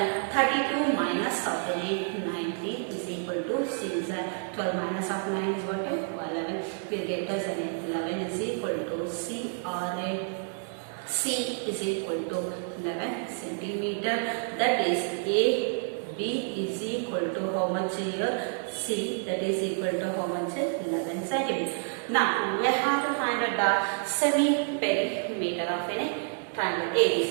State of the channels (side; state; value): left; silent; 59 dB below the other